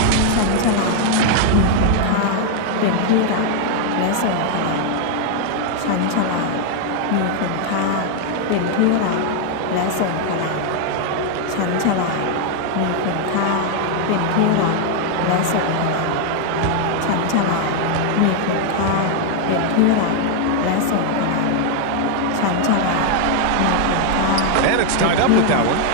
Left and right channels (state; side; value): different; both; correlation 0.00